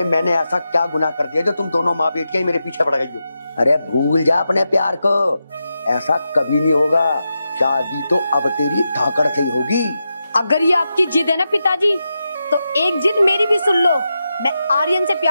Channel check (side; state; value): both; inverted; correlation -0.88